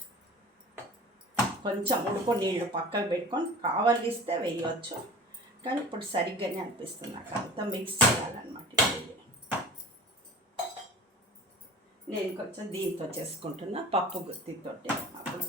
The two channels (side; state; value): both; normal; correlation 0.40